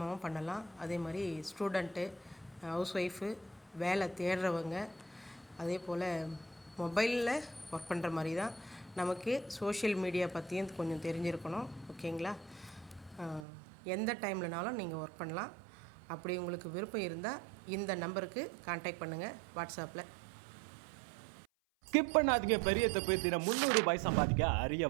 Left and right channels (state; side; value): drops out; left; at 13.5 s